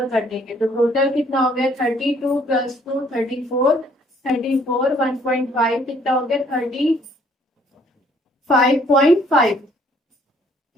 कर देंगे, तो टोटल कितना हो गया, 32 + 2 34। 34 1.5 कितना हो गया, 35.5।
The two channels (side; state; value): both; normal; correlation 0.62